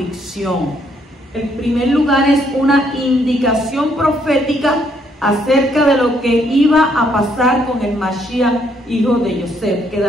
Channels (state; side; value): normal; both; correlation 0.70